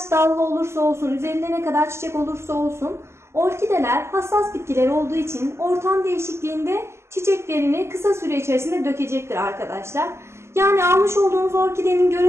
dallı olursa olsun, üzerinde ne kadar çiçek olursa olsun, orkideler hassas bitkiler olduğu için ortam değişikliğinde çiçeklerini kısa süre içerisinde dökecektir arkadaşlar. Yani almış olduğunuz orkidenin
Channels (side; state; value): left; late; 0.13 ms